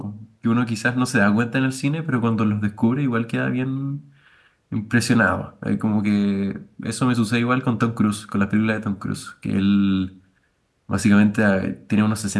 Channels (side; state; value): both; identical; correlation 1.00